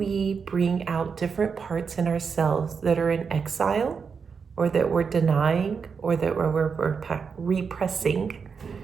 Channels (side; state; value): left; quieter; 5.8 dB